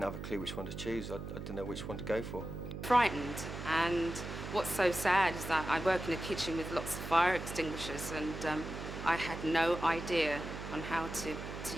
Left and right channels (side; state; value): right; noise; hum, 8 dB below the sound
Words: have a clue which one to choose. I didn't know which one to go for. Frightened, and what's so sad is that I work in a kitchen with lots of fire extinguishers, and I had no idea on how to